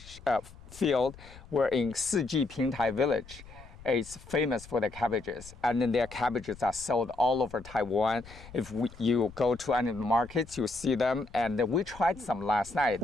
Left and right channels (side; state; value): left; noise; rumble, 19 dB below the sound